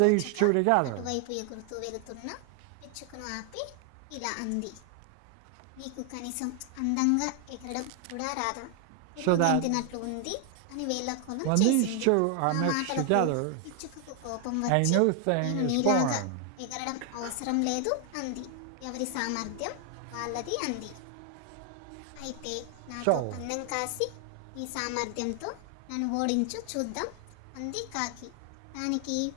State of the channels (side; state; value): both; different; correlation 0.00